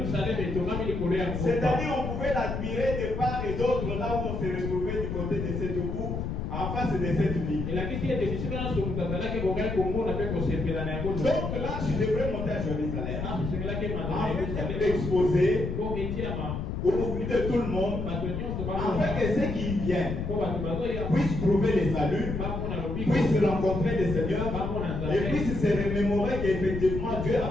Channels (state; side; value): noise; left; rumble, 3 dB below the sound